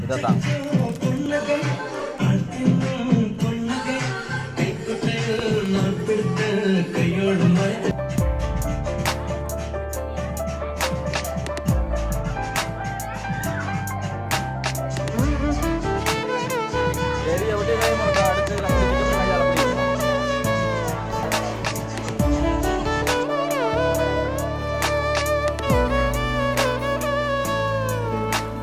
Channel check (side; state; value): both; identical; correlation 1.00